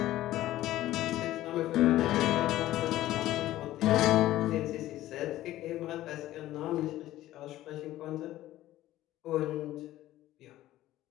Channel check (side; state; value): right; quieter; 14.8 dB